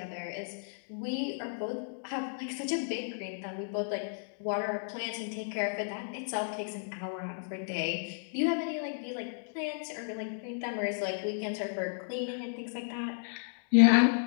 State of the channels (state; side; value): silent; right; digital silence